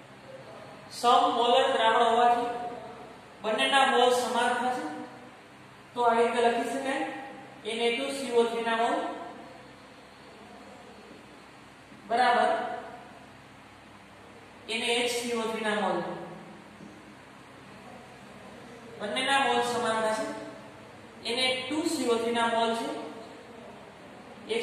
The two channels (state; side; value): identical; both; correlation 1.00